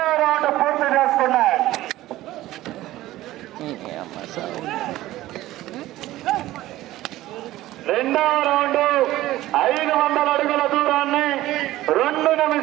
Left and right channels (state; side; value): quieter; left; 15.9 dB